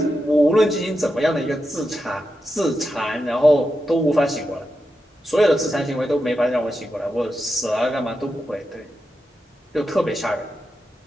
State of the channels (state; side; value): normal; both; correlation 0.88